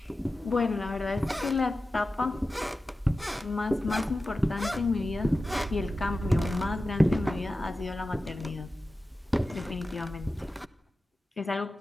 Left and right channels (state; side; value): normal; both; correlation 0.94